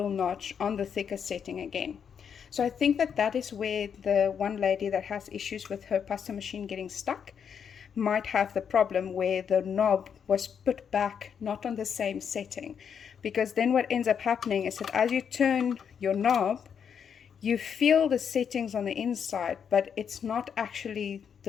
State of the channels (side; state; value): right; quieter; 7.4 dB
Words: notch on the thickest setting again. So I think that is where the one lady that has issues with her pasta machine getting stuck might have the problem, where the knob was put back not on the same setting. Because then what ends up happening is that as you turn your knob, you feel the settings on the inside, but it's not actually